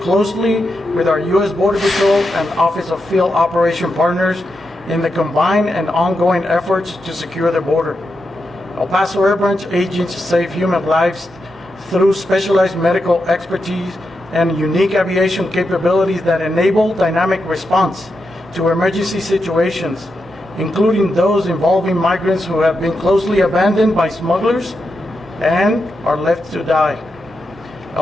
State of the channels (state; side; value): normal; both; correlation 0.86